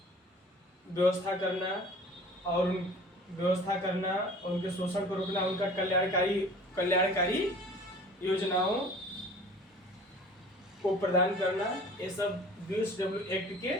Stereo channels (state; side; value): normal; both; correlation 0.46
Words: व्यवस्था करना और उनके शोषण को रोकना, उनका कल्याणकारी योजनाओं को प्रदान करना, ये सब BOCW एक्ट के